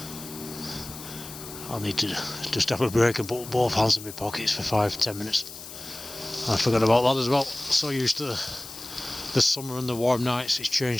I need to just have a break and put both hands in my pockets for 5-10 minutes. I forgot about that as well. So used to the summer and the warm nights, it's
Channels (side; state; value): left; noise; hiss, 13 dB below the sound